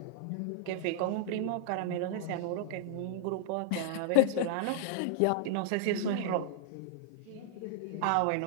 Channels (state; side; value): different; both; correlation 0.00